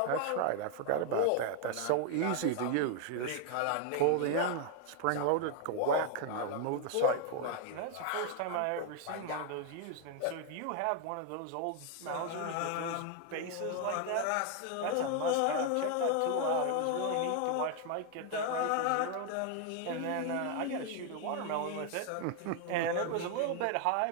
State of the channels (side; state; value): both; different; correlation 0.00